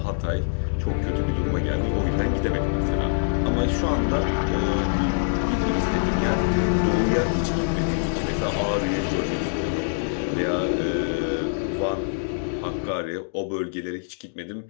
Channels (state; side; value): silent; right; digital silence